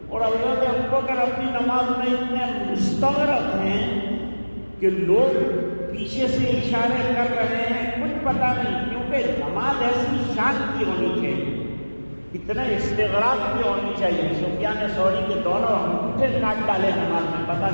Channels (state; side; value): inverted; both; correlation -1.00